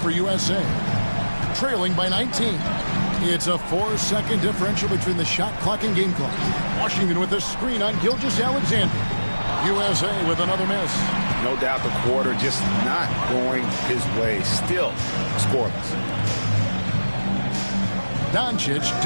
USA. Trailing by 19. It's a 4-second differential between the shot clock and game clock. Washington with a screen on Gilgeous-Alexander. USA with another miss. No doubt the quarter just not going his way. Still scoreless. Doncic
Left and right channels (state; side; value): inverted; both; correlation -1.00